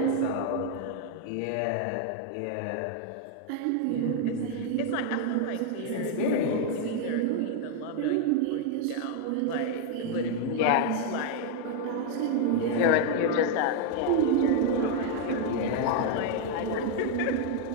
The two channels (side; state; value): both; different; correlation 0.01